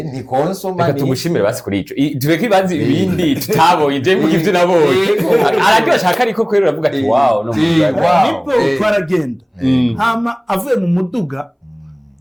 ni konsoma reka tumushimire basi kuri ico tureke ibanze ibindi tutabonye je mvuga ivyo nabonye araryo ashaka ariko kwera uravuga ati wow no nipo twaragenda hama avuye mu muduga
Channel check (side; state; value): both; identical; correlation 1.00